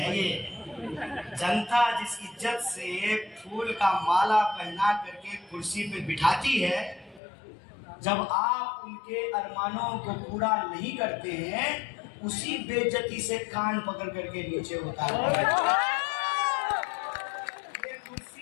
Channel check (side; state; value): right; drops out; at 7.2 s